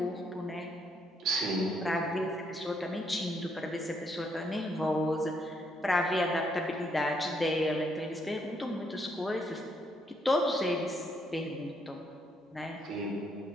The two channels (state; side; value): normal; both; correlation 0.74